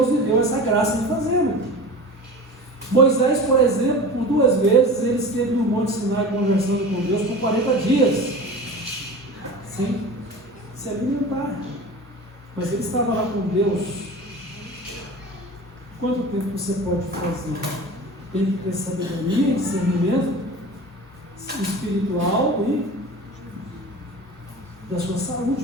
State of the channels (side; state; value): both; normal; correlation 0.34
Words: lhe deu essa graça de fazê-lo. Moisés, por exemplo, por 2 vezes, ele esteve no Monte Sinai conversando com Deus por 40 dias, sem se alimentar. Mas ele estava lá com Deus. Quanto tempo você pode fazer? Tem que ter sabedoria, discernimento espiritual e da sua